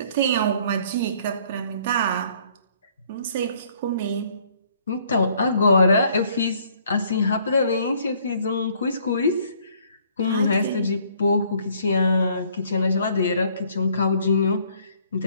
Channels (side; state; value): both; inverted; correlation -0.62